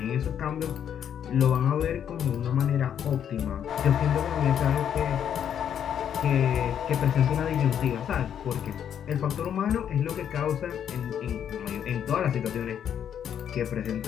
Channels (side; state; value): right; quieter; 9.0 dB